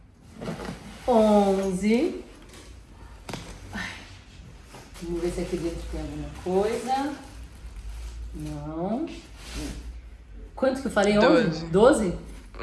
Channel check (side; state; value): both; identical; correlation 1.00